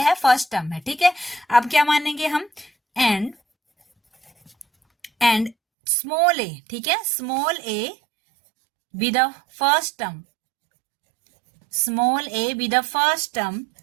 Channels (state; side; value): drops out; left; at 5.6 s